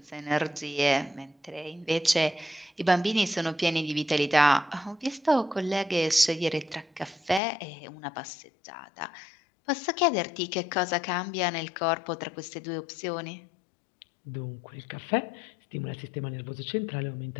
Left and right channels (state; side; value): drops out; right; at 7.4 s